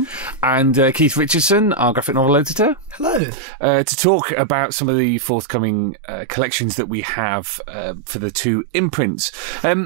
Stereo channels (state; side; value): drops out; left; at 3.2 s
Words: And Keith Richardson, our graphic novel editor. Hello. To talk about some of the forthcoming collections that we have for the two imprints.